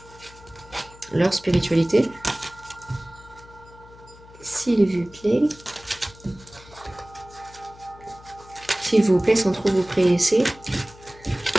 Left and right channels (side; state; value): left; noise; hum, 22 dB below the sound